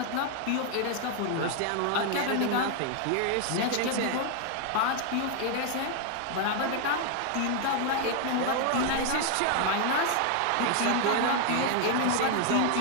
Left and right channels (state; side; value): different; both; correlation 0.00